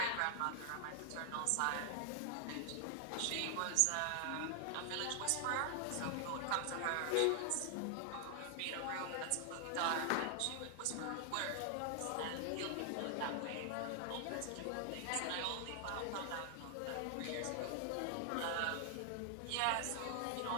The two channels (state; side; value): different; both; correlation 0.00